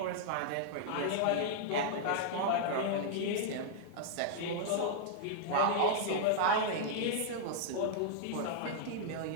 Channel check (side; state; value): both; different; correlation -0.01